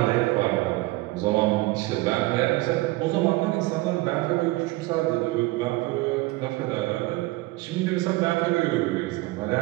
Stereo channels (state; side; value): quieter; left; 20.5 dB